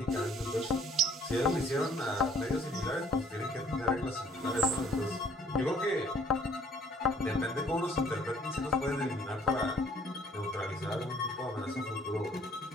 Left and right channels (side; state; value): both; normal; correlation 0.58